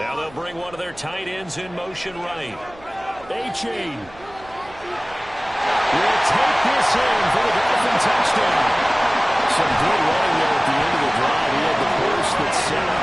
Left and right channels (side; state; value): right; noise; hum, 22 dB below the sound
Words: they'll bring one of their tight ends in motion right. Achane will take this in for the Dolphin touchdown. Some good running there at the end of the drive. He had the burst that set